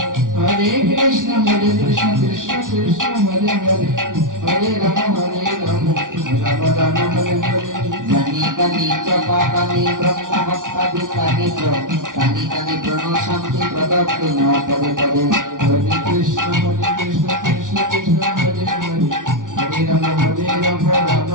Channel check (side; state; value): left; late; 0.88 ms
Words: হরে কৃষ্ণ কৃষ্ণ কৃষ্ণ হরে হরে হরে রাম রাম রাম হরে হরে জানি কানি চপা কানি ব্রহ্ম হত্যাদি কানি কানি কানি ব্রহ্ম শান্তি প্রদত্তি ন পদে পদে হরে কৃষ্ণ কৃষ্ণ কৃষ্ণ হরে হরে হরে রাম রাম